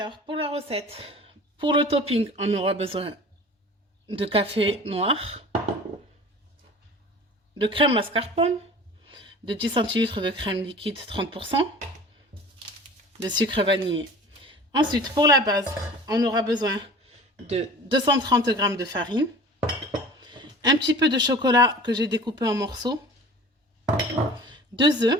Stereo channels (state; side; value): normal; both; correlation 0.41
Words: pour la recette, pour le topping, on aura besoin de café noir, de crème mascarpone, de 10 centilitres de crème liquide 30%, de sucre vanillé. Ensuite, pour la base, on aura besoin de 230 g de farine, un petit peu de chocolat que j'ai découpé en morceaux, 2